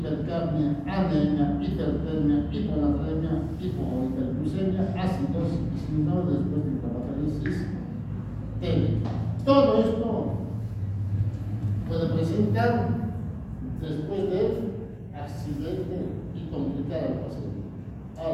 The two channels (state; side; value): identical; both; correlation 1.00